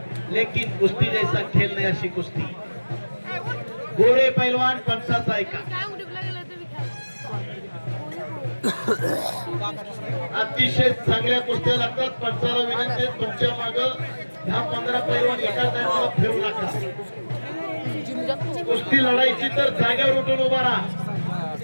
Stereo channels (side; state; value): both; inverted; correlation -1.00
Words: लेकिन कुस्ती जैसा खेल नहीं. अशी कुस्ती. गोरे पैलवान पंचाचा ऐका. अतिशय चांगल्या कुस्त्या लागतात. पंचाला विनंती आहे, तुमच्या माग 10-15 पैलवान एका टायमाला फिरू नका. कुस्ती लढायची तर जागेवर उठून उभा राहा.